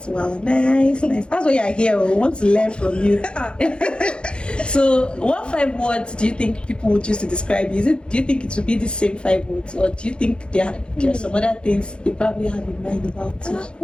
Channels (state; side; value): late; right; 0.054 ms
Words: Yeah. Wow. Nice. That's why you're here. We want to learn from you. So, what 5 words do you think people would use to describe you? Do you think it would be the same 5 words, or do you think there are some other things they probably have in mind about you?